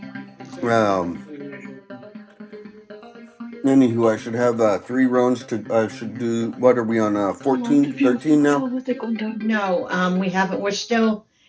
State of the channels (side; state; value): both; identical; correlation 1.00